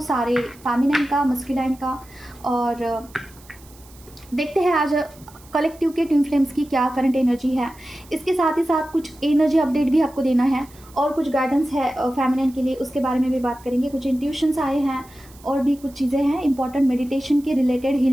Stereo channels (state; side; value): noise; right; hiss, 25 dB below the sound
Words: सारे फेमिनाइन का, मस्कुलाइन का। और देखते हैं आज कलेक्टिव के ट्विन फ्लेम्स की क्या करंट एनर्जी है। इसके साथ ही साथ कुछ एनर्जी अपडेट भी आपको देना है और कुछ गाइडेंस है फेमिनिन के लिए, उसके बारे में भी बात करेंगे। कुछ इंट्यूशंस आए हैं और भी कुछ चीज़ें हैं इंपॉर्टेंट मेडिटेशन के रिलेटेड,